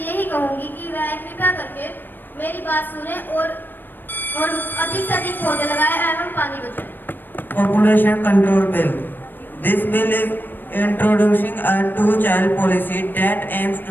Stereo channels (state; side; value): late; right; 0.093 ms